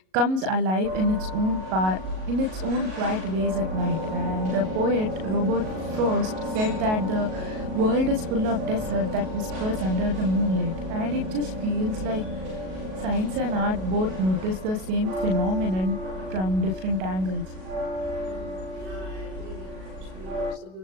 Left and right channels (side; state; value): left; late; 37 ms